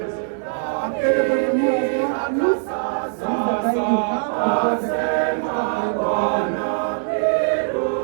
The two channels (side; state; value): left; silent; 63 dB below the other